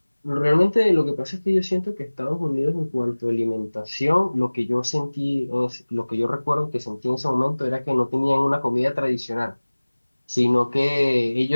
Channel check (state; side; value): inverted; both; correlation -1.00